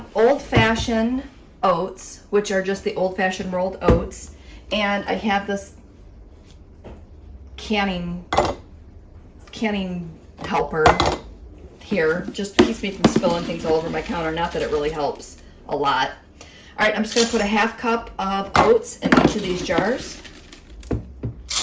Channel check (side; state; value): both; identical; correlation 1.00